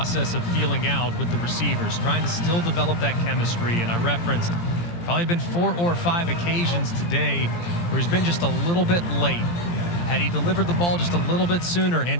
of feeling out with the receivers, trying to still develop that chemistry. And I referenced probably been 4 or 5 occasions today where he's been just a little bit late. Had he delivered the ball just a little bit sooner,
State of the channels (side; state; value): right; late; 17 ms